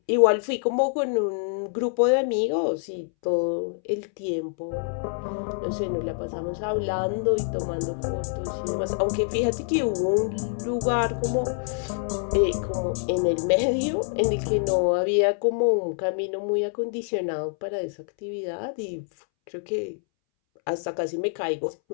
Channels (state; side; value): silent; right; 61 dB below the other